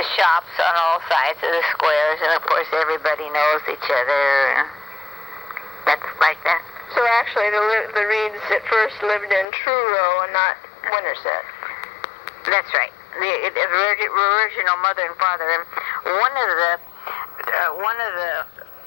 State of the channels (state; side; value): drops out; right; at 9.5 s